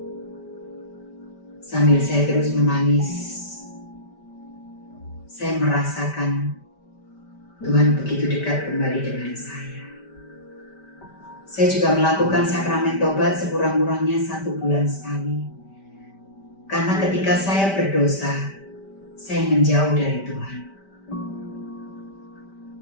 sambil saya terus menangis. Saya merasakan Tuhan begitu dekat kembali dengan saya. Saya juga melakukan sakramen tobat sekurang-kurangnya 1 bulan sekali. Karena ketika saya berdosa, saya menjauh dari Tuhan.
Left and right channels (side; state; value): right; late; 5.1 ms